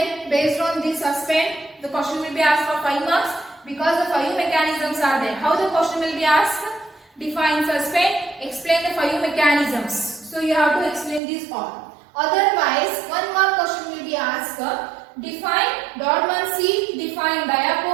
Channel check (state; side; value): drops out; left; at 11.2 s